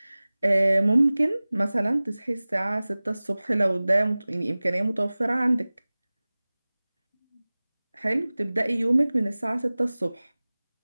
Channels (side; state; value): both; inverted; correlation -0.99